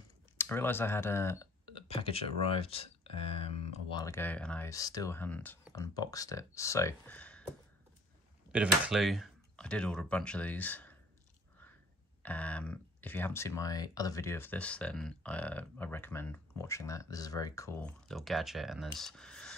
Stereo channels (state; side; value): normal; both; correlation 0.54